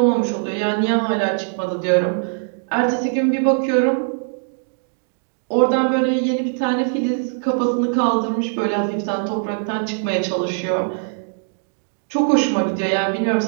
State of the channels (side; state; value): left; silent; digital silence